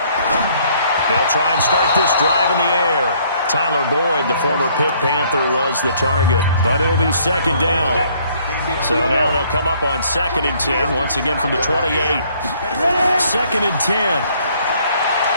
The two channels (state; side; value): inverted; both; correlation -0.63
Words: They'll try and start this drive in the air. Tyler Boyd, the former Pitt Panther, was the target, but it'll be 2nd down. So now they'll come up on 2nd and 10, once again from the 28. 2nd and 10.